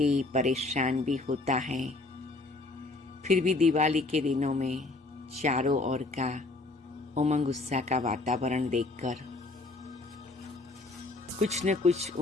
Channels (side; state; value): right; quieter; 3.2 dB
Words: परेशान भी होता है, फिर भी दिवाली के दिनों में चारों ओर का उमंग उत्साह का वातावरण देखकर कुछ न कुछ